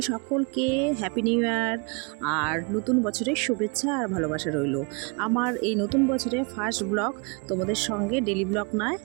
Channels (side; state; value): left; quieter; 33.1 dB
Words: সকলকে হ্যাপি নিউ ইয়ার আর নতুন বছরের শুভেচ্ছা আর ভালোবাসা রইল। আমার এই নতুন বছরে ফার্স্ট ব্লগ তোমাদের সঙ্গে ডেলি ব্লগ নয়,